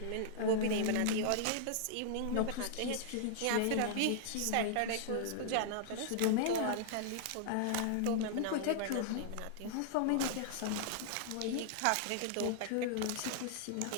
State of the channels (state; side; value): different; both; correlation -0.01